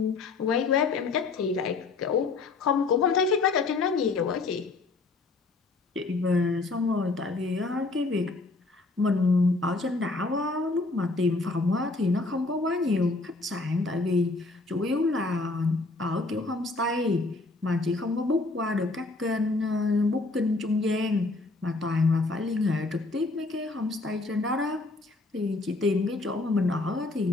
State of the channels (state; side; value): quieter; right; 3.5 dB